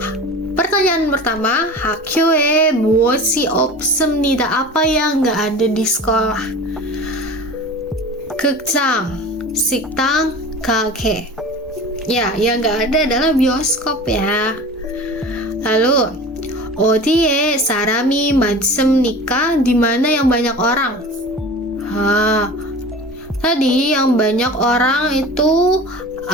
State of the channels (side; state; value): both; normal; correlation 0.37